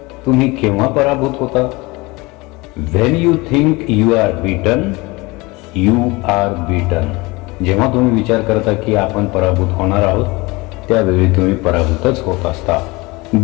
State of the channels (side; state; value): right; quieter; 23.8 dB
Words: तुम्ही केव्हा पराभूत होता? When you think you are beaten, you are beaten. जेव्हा तुम्ही विचार करता की आपण पराभूत होणार आहोत, त्यावेळी तुम्ही पराभूतच होत असता.